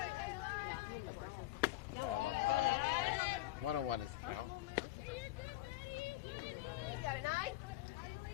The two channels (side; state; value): right; quieter; 16.5 dB